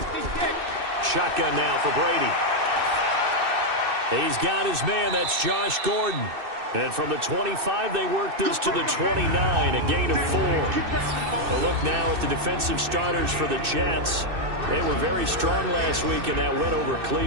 Shotgun now for Brady. He's got his man. That's Josh Gordon. And from the 25, they work this to the 29, a gain of 4. A look now at the defensive starters for the Jets. They were very strong last week in that win over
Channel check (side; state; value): left; late; 2.6 ms